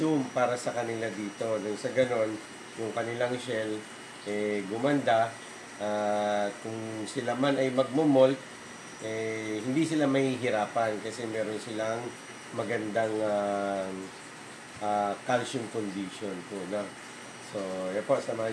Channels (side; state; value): both; identical; correlation 1.00